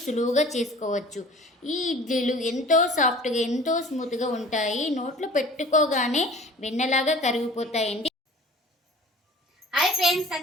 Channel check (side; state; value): both; normal; correlation 0.45